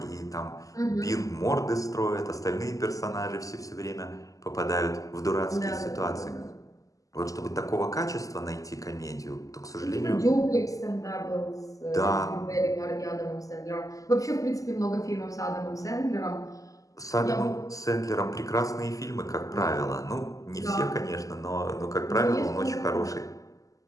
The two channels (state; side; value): late; right; 0.16 ms